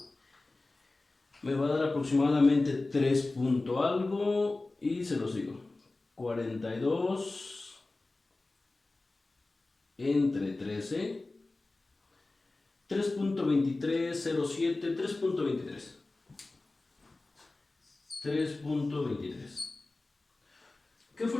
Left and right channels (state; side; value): quieter; right; 3.2 dB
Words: me va a dar aproximadamente 3 punto algo y se los digo. 42 entre 13, 3.2307, 3.23. 3.23. ¿Qué